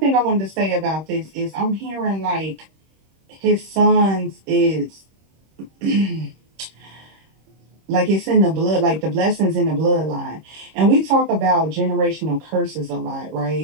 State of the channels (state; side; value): late; left; 26 ms